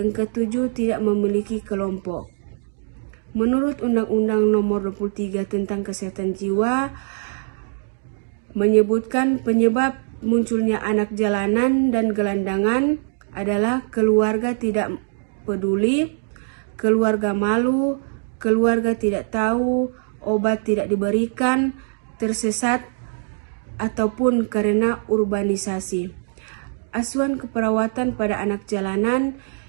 ketujuh, tidak memiliki kelompok. Menurut Undang-Undang Nomor 23 tentang Kesehatan Jiwa, menyebutkan penyebab munculnya anak jalanan dan gelandangan adalah keluarga tidak peduli, keluarga malu, keluarga tidak tahu, obat tidak diberikan, tersesat, ataupun karena urbanisasi. Asuhan keperawatan pada anak jalanan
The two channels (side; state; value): left; silent; digital silence